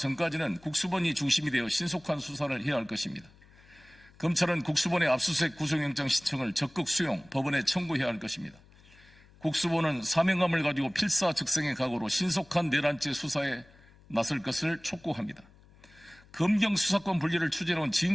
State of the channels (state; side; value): noise; left; hum, 26 dB below the sound